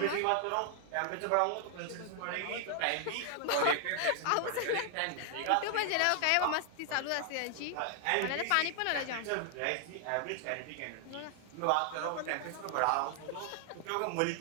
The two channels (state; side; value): different; both; correlation 0.00